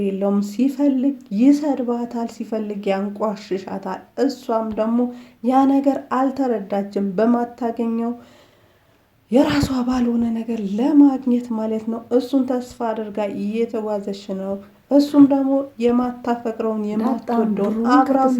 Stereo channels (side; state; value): both; identical; correlation 1.00